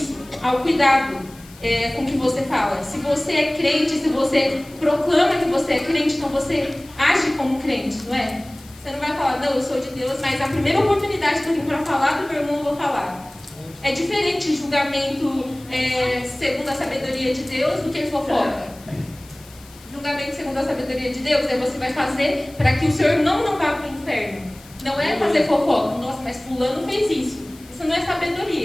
ao cuidado com o que você fala. Se você é crente, se você proclama que você é crente, então você age como crente, não é? Você não vai falar, não, eu sou de Deus, mas a primeira oportunidade que eu tenho para falar do meu irmão, eu vou falar. É diferente julgamento segundo a sabedoria de Deus do que fofoca. Julgamento segundo a sabedoria de Deus você vai fazer para que o seu irmão não vá para o inferno. Não é fazer fofoca. Nossa, mas fulano fez isso. Isso não é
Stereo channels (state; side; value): noise; left; hiss, 23 dB below the sound